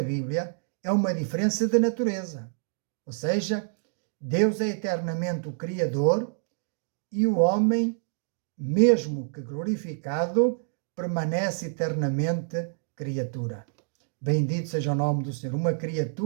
Bíblia, é uma diferença de natureza. Ou seja, Deus é eternamente o Criador e o homem, mesmo que glorificado, permanece eternamente criatura. Bendito seja o nome do Senhor. Uma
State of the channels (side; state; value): left; silent; digital silence